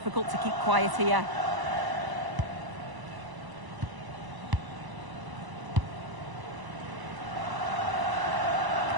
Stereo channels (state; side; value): late; left; 1.0 ms